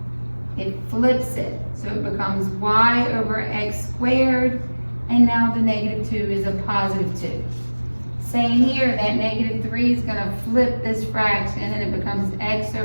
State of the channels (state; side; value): inverted; both; correlation -1.00